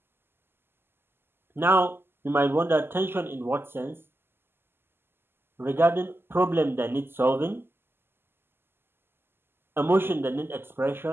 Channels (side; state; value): left; late; 0.11 ms